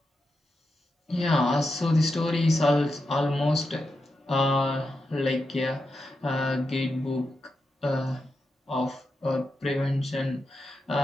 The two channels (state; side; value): normal; both; correlation 0.87